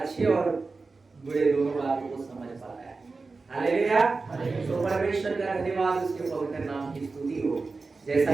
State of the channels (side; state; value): left; quieter; 4.0 dB